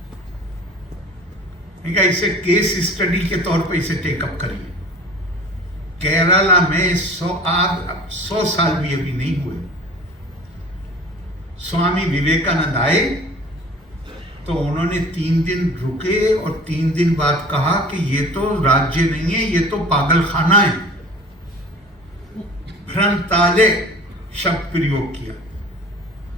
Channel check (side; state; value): both; normal; correlation 0.42